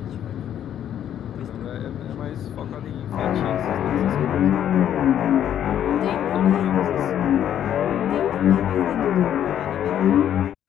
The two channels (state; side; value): quieter; right; 10.3 dB